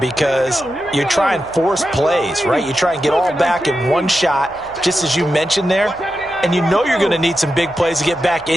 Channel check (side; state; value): right; noise; hum, 25 dB below the sound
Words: you try and force plays, right? You try and get all back in one shot, just as you mentioned there. And you know you're going to need some big plays to get back